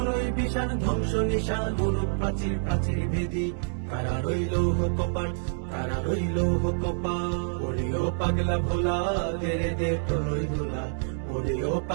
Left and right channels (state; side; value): silent; left; digital silence